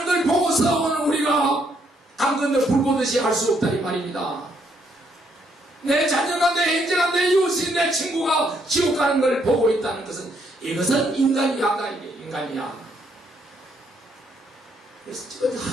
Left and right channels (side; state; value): both; normal; correlation 0.72